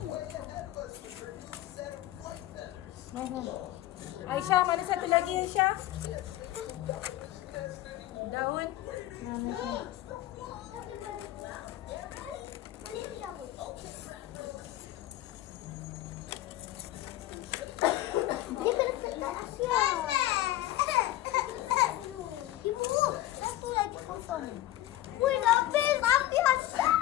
mana satu lagi Aisyah? Daun. Wih, habis Aisyah.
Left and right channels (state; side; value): quieter; right; 14.8 dB